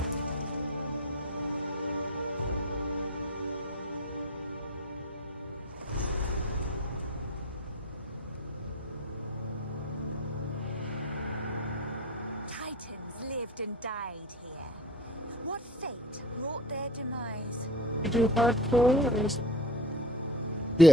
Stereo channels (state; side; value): normal; both; correlation 0.35